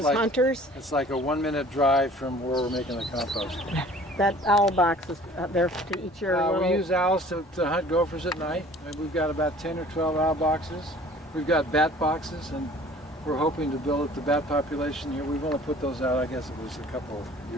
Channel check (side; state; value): both; normal; correlation 0.49